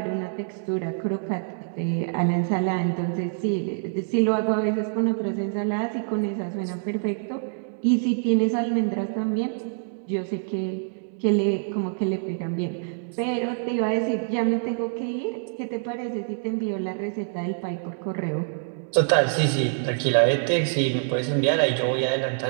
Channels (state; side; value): silent; left; digital silence